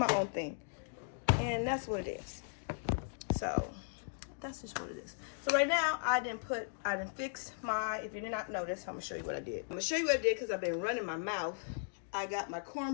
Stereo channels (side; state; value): right; silent; digital silence